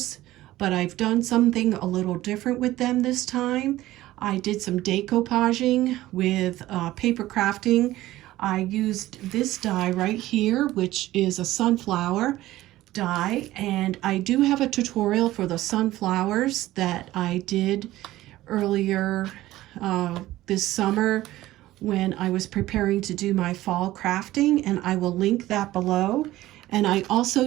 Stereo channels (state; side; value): quieter; left; 16.0 dB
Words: but I've done something a little different with them this time. I did some decoupaging with paper crafting. I used this die right here, which is a sunflower die, and I do have a tutorial for the sunflowers that I did earlier this summer when I was preparing to do my fall crafting, and I will link that below. And I also